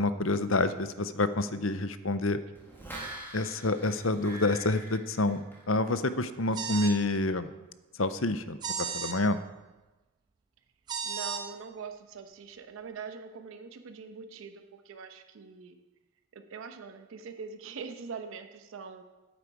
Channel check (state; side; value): normal; both; correlation 0.21